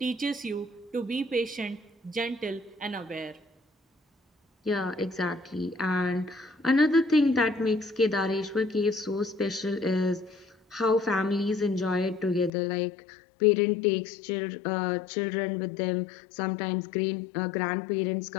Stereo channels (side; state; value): right; drops out; at 12.5 s